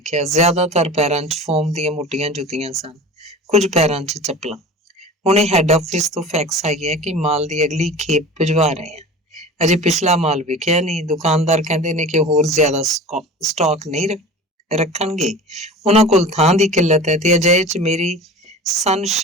ਜ਼ਿਆਦਾਤਰ ਪੈਰਾਂ 'ਚ ਫੋਮ ਦੀਆਂ ਮੋਟੀਆਂ ਜੁੱਤੀਆਂ ਸਨ, ਕੁਝ ਪੈਰਾਂ 'ਚ ਚੱਪਲਾਂ। ਹੁਣੇ ਹੈੱਡ ਆਫਿਸ ਤੋਂ ਫੈਕਸ ਆਈ ਹੈ ਕਿ ਮਾਲ ਦੀ ਅਗਲੀ ਖੇਪ ਭਿਜਵਾ ਰਹੇ ਆ। ਅਜੇ ਪਿਛਲਾ ਮਾਲ ਵਿਕਿਆ ਨਹੀਂ। ਦੁਕਾਨਦਾਰ ਕਹਿੰਦੇ ਨੇ ਕਿ ਹੋਰ ਜ਼ਿਆਦਾ ਸਟਾਕ ਨਹੀਂ ਰੱਖਣਗੇ। ਉਹਨਾਂ ਕੋਲ ਥਾਂ ਦੀ ਕਿੱਲਤ ਹੈ ਤੇ ਅਜਿਹੇ 'ਚ ਮੇਰੀ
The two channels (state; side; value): normal; both; correlation 0.37